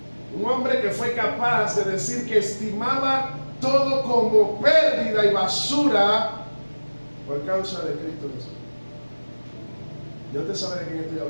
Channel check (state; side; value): inverted; both; correlation -1.00